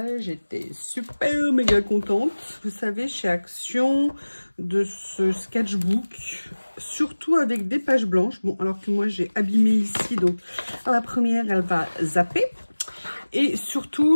j'étais super méga contente, vous savez, chez Action, de ce sketchbook, surtout avec des pages blanches. Bon, alors que moi j'ai abîmé ici, donc la première elle va zapper. Et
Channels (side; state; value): both; inverted; correlation -1.00